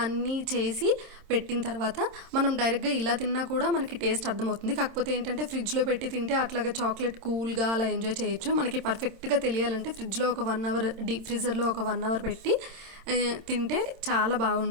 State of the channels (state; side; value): late; left; 26 ms